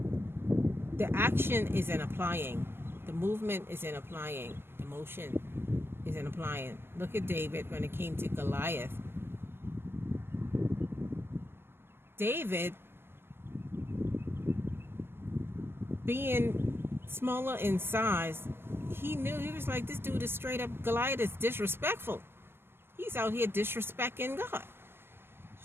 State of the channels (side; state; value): left; late; 0.11 ms